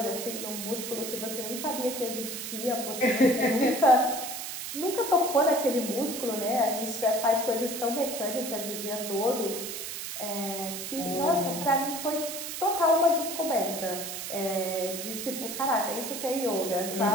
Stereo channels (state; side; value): noise; right; hiss, 6 dB below the sound